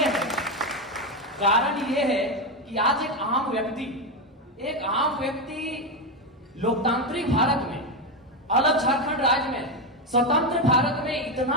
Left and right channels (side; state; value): both; normal; correlation 0.10